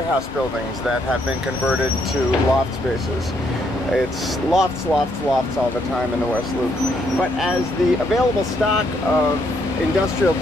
buildings that have been converted to loft spaces. It's lofts, lofts, lofts all the time in the West Loop. But as the available stock of industrial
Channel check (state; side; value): normal; both; correlation 0.73